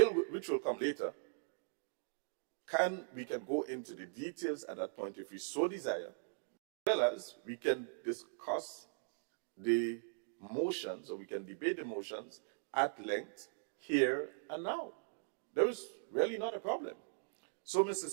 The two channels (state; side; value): silent; left; digital silence